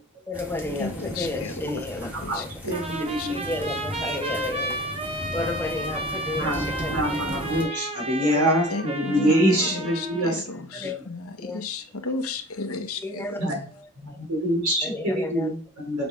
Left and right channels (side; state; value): both; normal; correlation 0.42